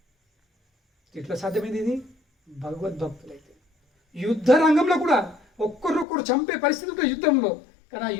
ఎట్లా సాధ్యమైంది ఇది? భగవద్భక్తులైతే. యుద్ధ రంగంలో కూడా ఒక్కరొక్కరు చంపే పరిస్థితి ఉంటుంది యుద్ధంలో. కానీ ఆ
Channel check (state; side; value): drops out; right; at 6.1 s